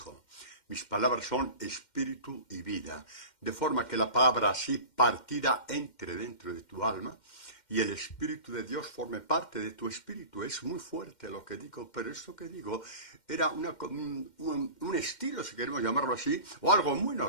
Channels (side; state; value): right; late; 2.1 ms